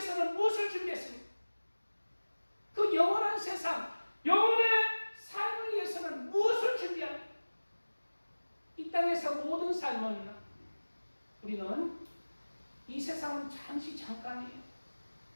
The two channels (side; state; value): both; inverted; correlation -1.00